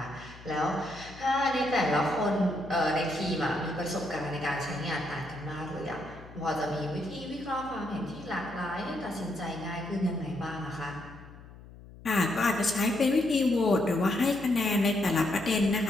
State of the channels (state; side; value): noise; left; hum, 18 dB below the sound